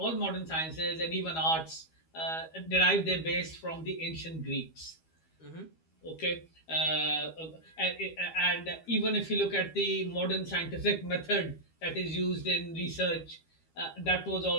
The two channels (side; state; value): right; late; 12 ms